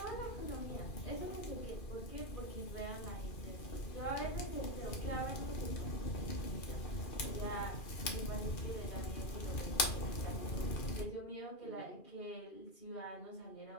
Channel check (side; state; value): right; late; 2.4 ms